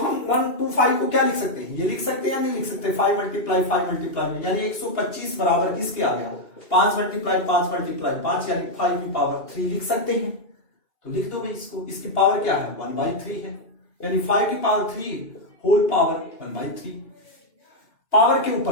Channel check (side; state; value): right; late; 2.6 ms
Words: 1 to 5 को क्या लिख सकते हैं, ये लिख सकते हैं या नहीं लिख सकते, 5 मल्टीप्लाई 5 मल्टीप्लाई, यानी 125 बराबर किसके आ गया, 5 मल्टीप्लाई 5 मल्टीप्लाई 5, यानी 5 की पावर 3 लिख सकते हैं। तो लिख दो भाई इसको, इसकी पावर क्या है 1/3 है, यानी 5 की पावर 3 होल पावर 1/3। पावर के